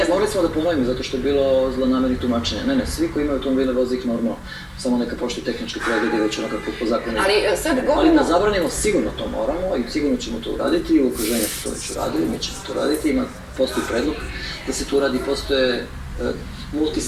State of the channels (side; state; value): both; identical; correlation 1.00